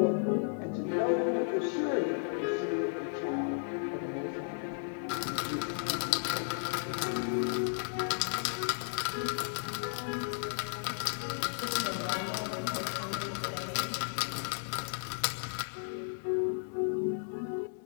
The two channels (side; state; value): right; silent; digital silence